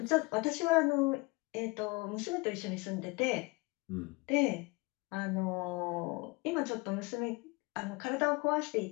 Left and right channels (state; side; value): quieter; right; 25.6 dB